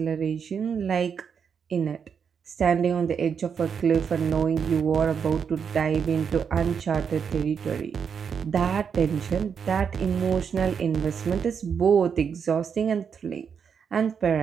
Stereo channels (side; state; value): left; quieter; 6.8 dB